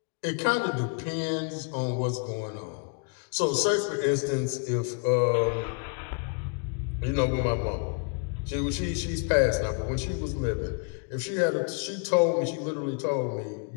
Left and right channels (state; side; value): quieter; right; 38.9 dB